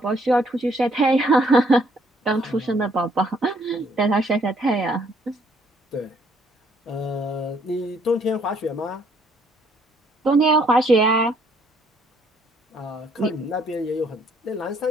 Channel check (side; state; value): both; normal; correlation 0.66